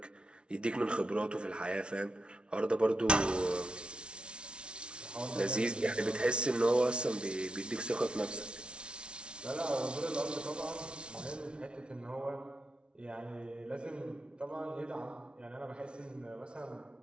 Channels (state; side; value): late; left; 0.057 ms